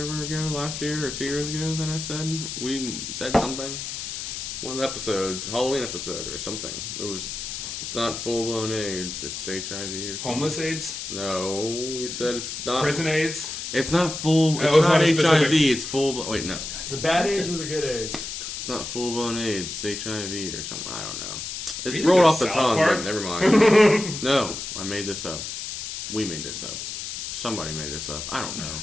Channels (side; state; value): left; noise; hiss, 6 dB below the sound